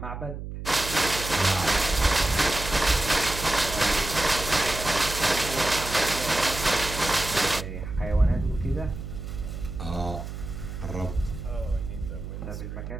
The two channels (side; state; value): right; noise; hum, 8 dB below the sound